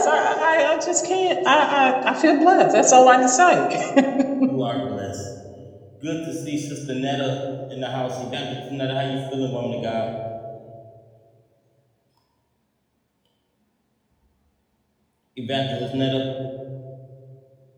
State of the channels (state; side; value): identical; both; correlation 1.00